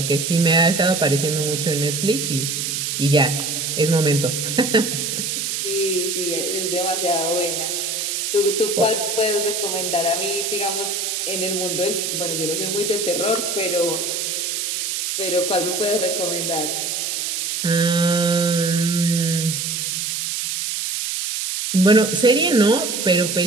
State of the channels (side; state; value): right; noise; hiss, 2 dB below the sound